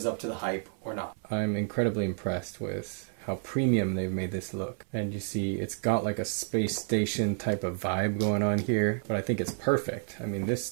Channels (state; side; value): silent; left; 58 dB below the other